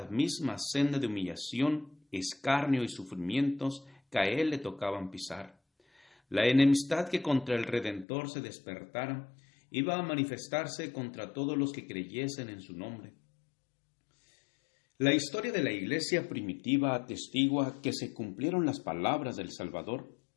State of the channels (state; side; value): drops out; right; at 8.1 s